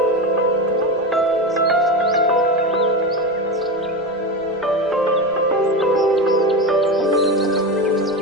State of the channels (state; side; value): noise; right; rumble, 28 dB below the sound